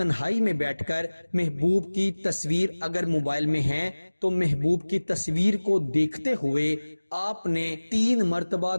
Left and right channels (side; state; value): both; inverted; correlation -1.00